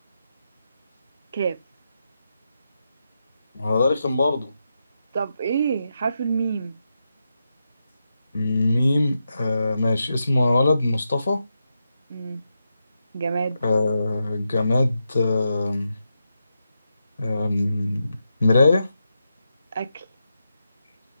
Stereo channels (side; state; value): both; inverted; correlation -0.86